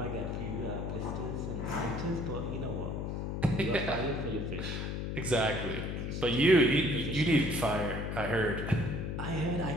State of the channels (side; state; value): left; noise; hum, 3 dB below the sound